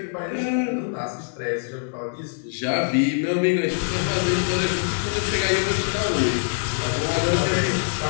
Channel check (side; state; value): right; silent; digital silence